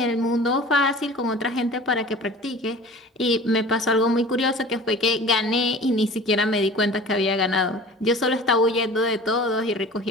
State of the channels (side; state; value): both; normal; correlation 0.41